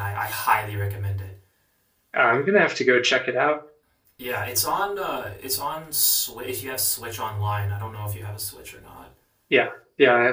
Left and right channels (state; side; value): identical; both; correlation 1.00